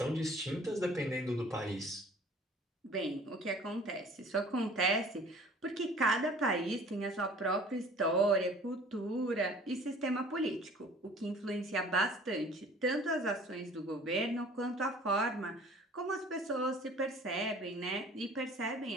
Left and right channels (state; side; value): normal; both; correlation 0.49